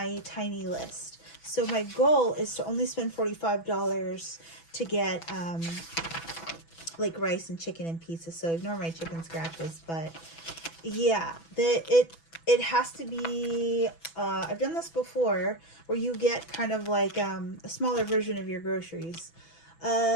tiny list. So my goal is to only spend $45 to get like rice and chicken and pizza. So ignore my chicken scratches, but yeah, it has to be I've done this before where you get kind of like a smaller version of your groceries.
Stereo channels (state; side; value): late; right; 6.0 ms